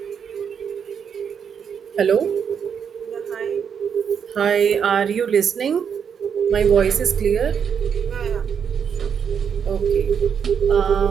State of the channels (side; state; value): left; quieter; 7.3 dB